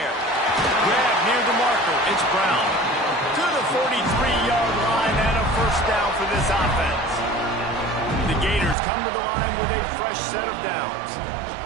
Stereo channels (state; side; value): drops out; left; at 8.8 s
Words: Grab near the marker. It's Brown. To the 43-yard line and a first down for this offense. The Gators come to the line with a fresh set of downs.